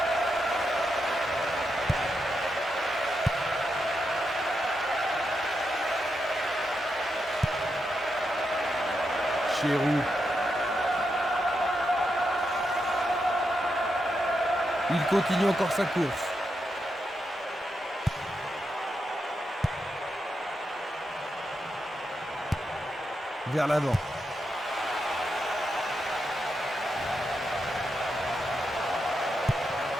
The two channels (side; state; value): both; normal; correlation 0.85